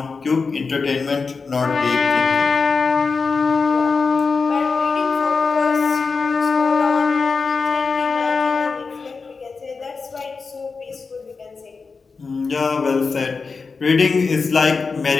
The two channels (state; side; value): quieter; right; 4.7 dB